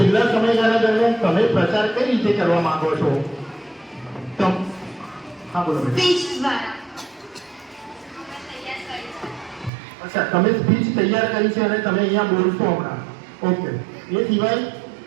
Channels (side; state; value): left; drops out; at 9.7 s